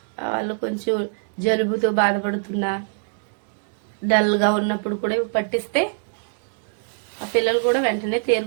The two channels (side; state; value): left; silent; 62 dB below the other